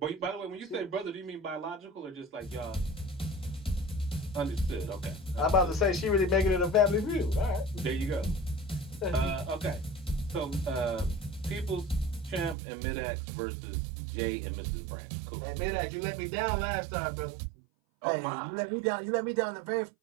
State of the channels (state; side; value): drops out; left; at 12.6 s